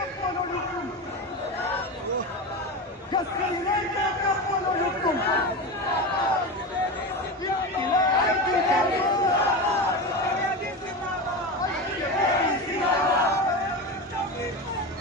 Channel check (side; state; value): both; normal; correlation 0.22